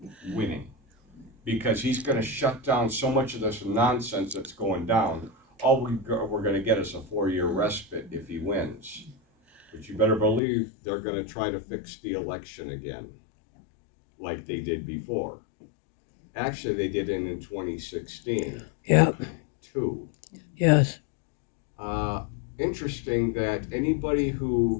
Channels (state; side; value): drops out; right; at 10.4 s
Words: winning because he's going to shut down so much of this nonsense that's going down. All we're going to get is a 4-year respite if he wins. But you better believe they're going to try to fix the election again, like they did before. Actually, they did it in 2016. Yeah. Too. Yes. Interesting that anybody